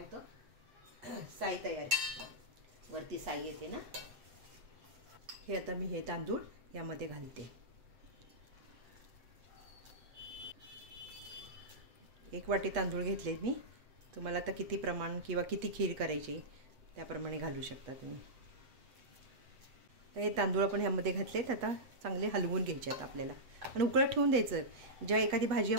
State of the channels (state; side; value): late; left; 7.8 ms